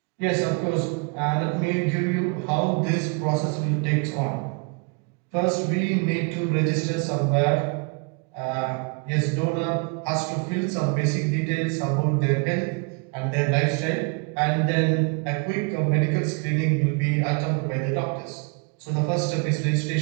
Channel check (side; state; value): left; quieter; 32.9 dB